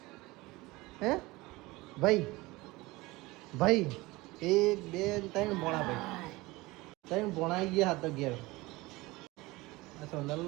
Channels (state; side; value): quieter; left; 21.3 dB